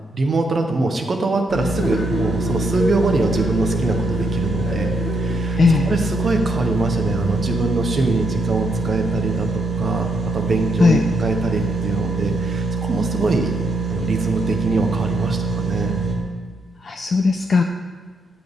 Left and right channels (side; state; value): both; normal; correlation 0.77